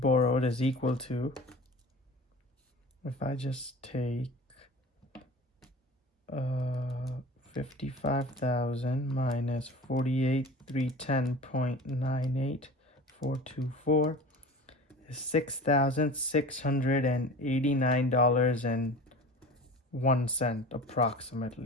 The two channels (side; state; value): both; normal; correlation 0.37